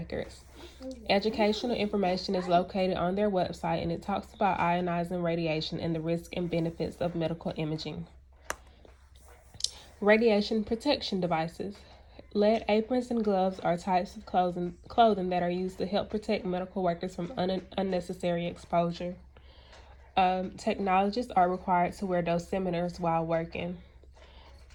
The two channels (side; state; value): both; identical; correlation 1.00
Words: Educational information is located on their website, and it talks about ionizing radiation and the risks and benefits of medical imaging. Radiation protection devices. Lead aprons and gloves are types of clothing that are used to help protect medical workers from unnecessary exposure. Technologists are required to wear dosimeters while working.